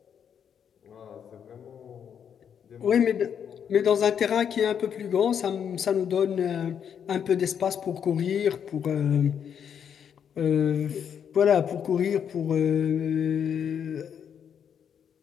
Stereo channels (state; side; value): quieter; right; 8.1 dB